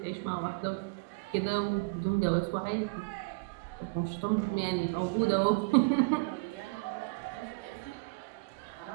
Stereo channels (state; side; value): quieter; left; 29.8 dB